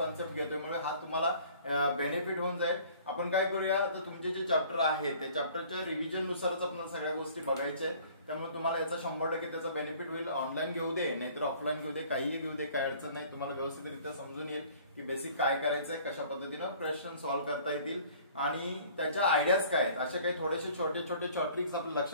घेतोय, म्हणजे हा तुम्हाला बेनिफिट होऊन जाईल. आपण काय करूया, आता तुमचे जे चॅप्टर आहे ते चॅप्टरच्या रिव्हिजन नुसारच आपल्याला सगळ्या गोष्टी बघायच्या आहेत. त्यामुळे तुम्हाला याचा 100% त्याचा बेनिफिट होईल. ऑनलाईन घेऊ दे नाहीतर ऑफलाईन घेऊ दे, काहीही घेऊ दे, काही अडचण नाही. तुम्हाला व्यवस्थितरित्या समजून येईल की बेसिक काय करायचंय, कशा पद्धतीनं प्रश्न सॉल्व्ह करता येतील आणि त्याच्या आयडियाज काय आहेत, असे काही थोडेसे छोटे छोटे ट्रिक्स आपल्या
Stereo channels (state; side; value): inverted; both; correlation -0.52